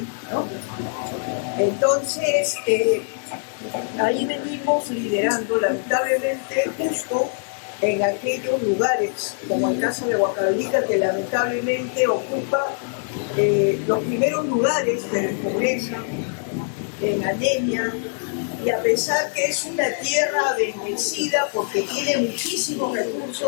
¿no? Entonces, ahí venimos liderando, lamentablemente, justo en aquellos lugares, como el caso de Huancavelica, que lamentablemente ocupa los primeros lugares de pobreza, en anemia, y a pesar que es una tierra bendecida porque tiene muchísimos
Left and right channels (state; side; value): silent; right; 56 dB below the other